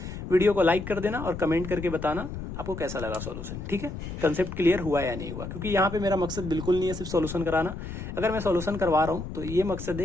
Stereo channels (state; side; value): noise; left; rumble, 8 dB below the sound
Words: वीडियो को लाइक कर देना और कमेंट करके बताना आपको कैसा लगा सॉल्यूशन, ठीक है, कंसेप्ट क्लियर हुआ या नहीं हुआ। क्योंकि यहाँ पे मेरा मकसद बिल्कुल नहीं है सिर्फ सॉल्यूशन कराना, अगर मैं सॉल्यूशन करवा रहा हूँ तो ये मकसद